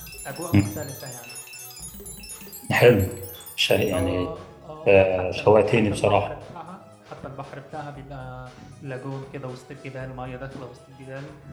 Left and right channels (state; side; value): identical; both; correlation 1.00